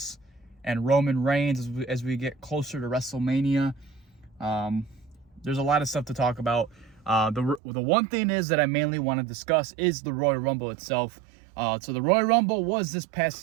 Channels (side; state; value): left; drops out; at 7.6 s